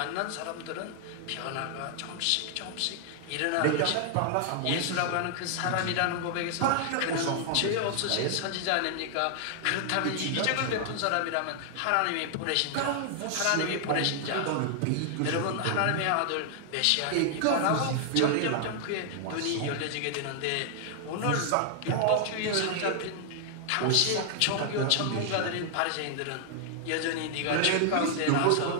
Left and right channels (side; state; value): both; different; correlation 0.00